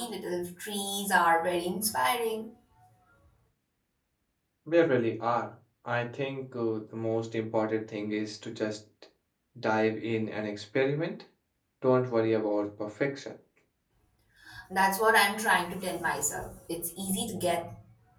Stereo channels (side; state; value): both; identical; correlation 1.00